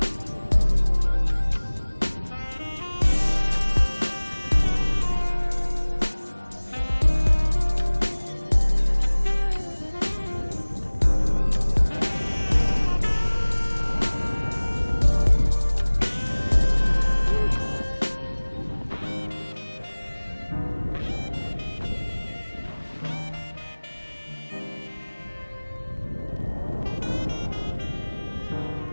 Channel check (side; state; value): both; inverted; correlation -1.00